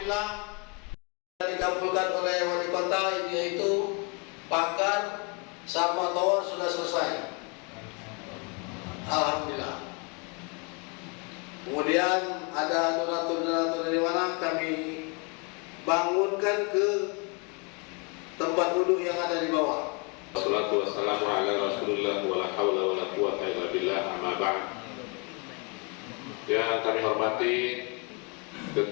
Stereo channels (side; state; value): right; quieter; 33.1 dB